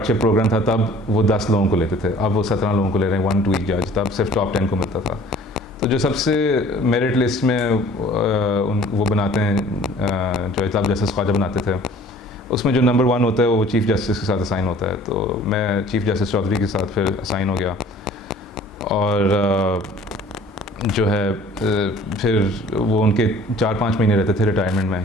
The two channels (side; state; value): both; normal; correlation 0.50